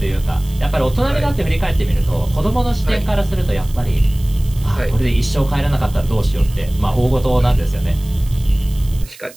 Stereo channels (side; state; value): right; noise; hiss, 21 dB below the sound